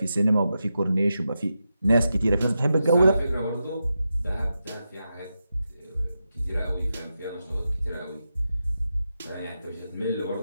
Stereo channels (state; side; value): inverted; both; correlation -0.88